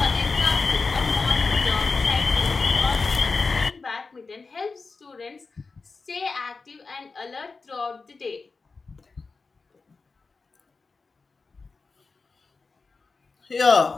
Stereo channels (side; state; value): right; quieter; 4.3 dB